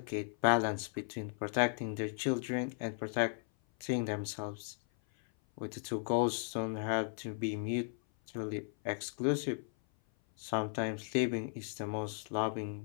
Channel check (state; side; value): silent; right; 54 dB below the other